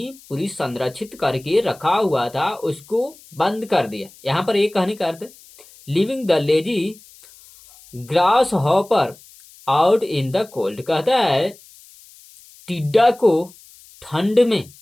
पूरी संरक्षित करके रखा हुआ था, उसको बंद कर दिया। यहां पर एक कहने का अर्थ है living the lazy grass hopper out in the cold. कहता है टिड्डा को ठंड में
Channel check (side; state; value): left; noise; hiss, 24 dB below the sound